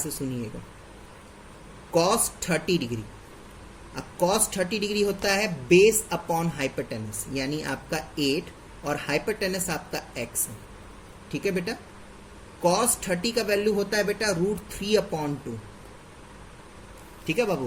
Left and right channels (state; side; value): identical; both; correlation 1.00